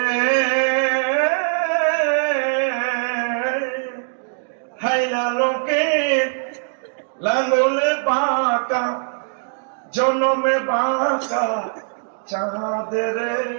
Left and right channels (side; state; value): left; silent; digital silence